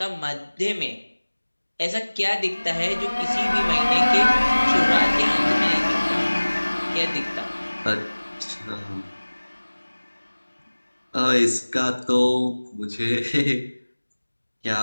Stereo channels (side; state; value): both; inverted; correlation -1.00